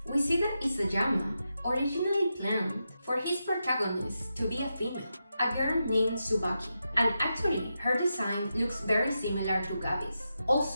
We see that Isayama originally planned for his protagonist to be a female, a girl named Tsubaki, and actually her design looks very similar to Gabi's.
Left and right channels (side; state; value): both; inverted; correlation -0.87